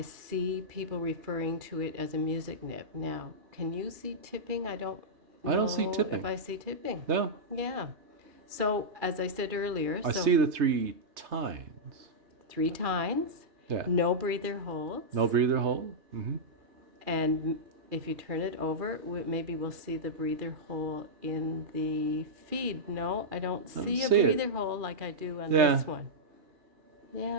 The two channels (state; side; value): late; left; 3.2 ms